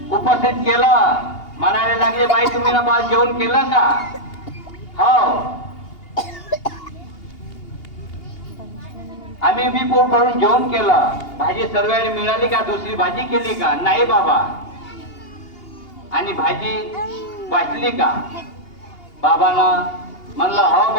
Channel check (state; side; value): late; right; 2.8 ms